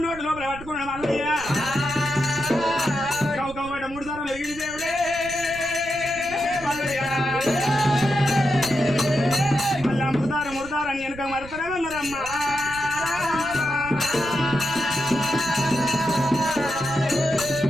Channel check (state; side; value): noise; right; rumble, 15 dB below the sound